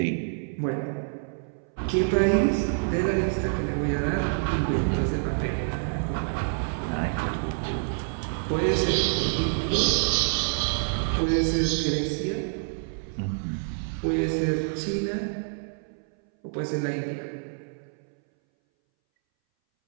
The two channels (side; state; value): left; silent; 60 dB below the other